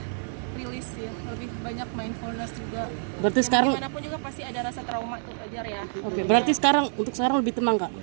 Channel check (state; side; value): silent; left; digital silence